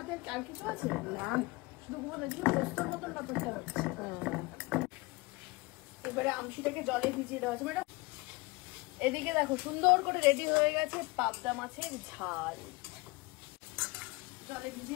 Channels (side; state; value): right; quieter; 24.0 dB